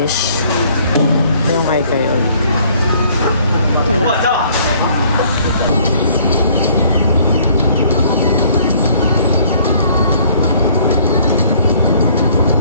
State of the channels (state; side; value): inverted; both; correlation -0.60